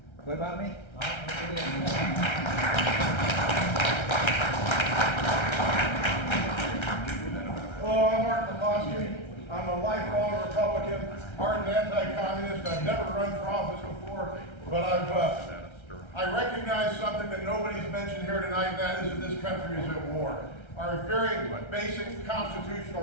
What about me? Hello, I'm Mark McCloskey. I'm a lifelong Republican, ardent anti-communist. I've never run for office before, but I recognize something that nobody's mentioned here tonight, and that is that this country is at war. Our very basic constitutional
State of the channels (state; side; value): late; right; 1.3 ms